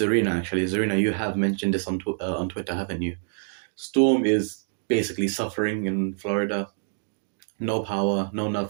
actually. Zerina, you have mentioned this on Twitter, haven't you? Storm is basically suffering in Florida. No power, no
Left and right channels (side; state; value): left; silent; 61 dB below the other